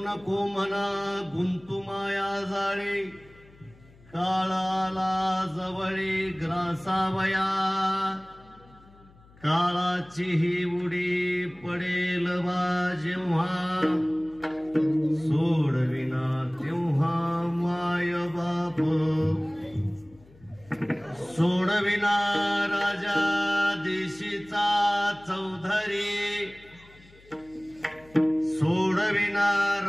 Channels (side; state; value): left; noise; hum, 26 dB below the sound